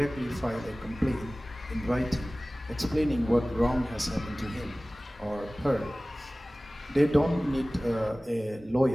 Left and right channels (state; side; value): normal; both; correlation 0.98